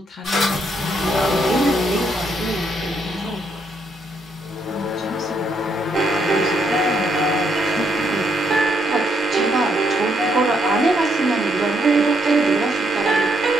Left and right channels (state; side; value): normal; both; correlation 0.74